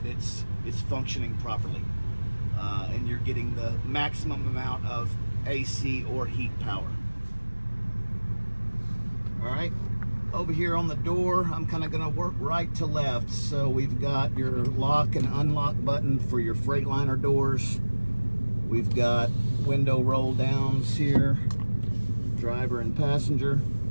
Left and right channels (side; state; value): both; inverted; correlation -1.00